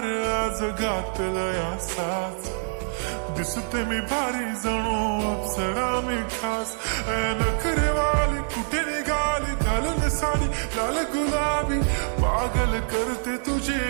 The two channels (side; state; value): left; silent; digital silence